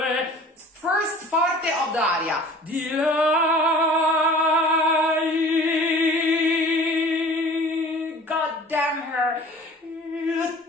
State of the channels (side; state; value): both; normal; correlation 0.45